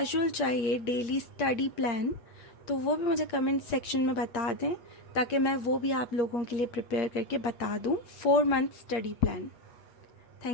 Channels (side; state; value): right; late; 8.6 ms